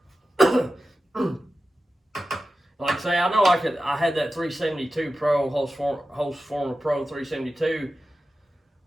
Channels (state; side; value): normal; both; correlation 0.93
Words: Like I say, I know I had that 372 Pro, Hose Former Pro 372,